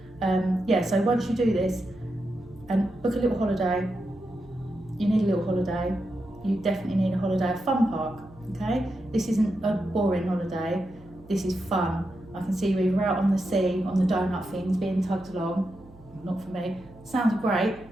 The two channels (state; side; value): noise; right; hum, 24 dB below the sound